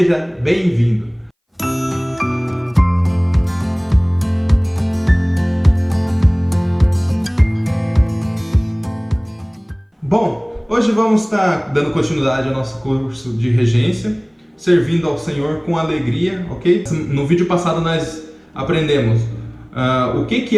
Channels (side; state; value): both; identical; correlation 1.00